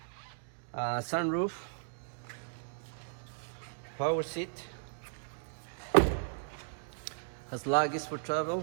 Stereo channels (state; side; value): silent; left; digital silence